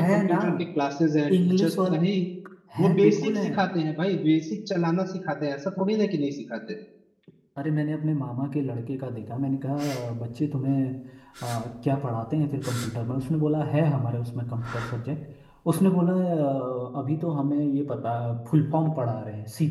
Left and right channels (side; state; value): both; identical; correlation 1.00